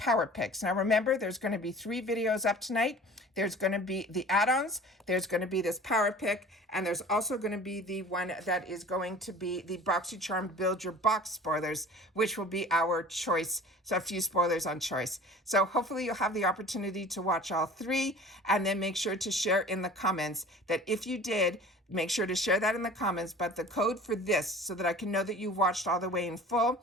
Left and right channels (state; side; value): normal; both; correlation 0.43